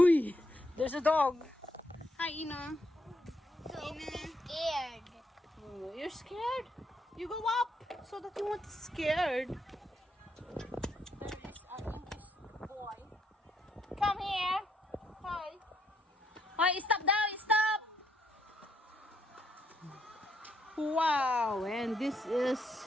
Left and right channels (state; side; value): normal; both; correlation 0.75